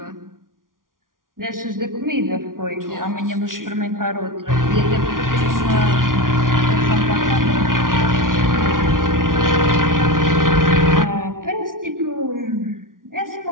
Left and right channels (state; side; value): late; left; 0.90 ms